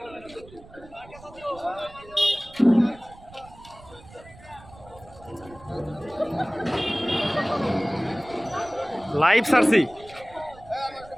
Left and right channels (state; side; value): noise; right; rumble, 21 dB below the sound